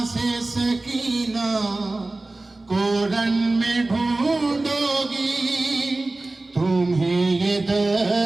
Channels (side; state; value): left; quieter; 3.0 dB